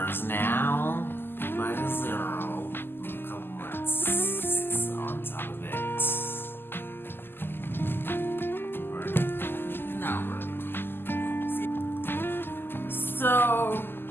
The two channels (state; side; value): late; right; 0.10 ms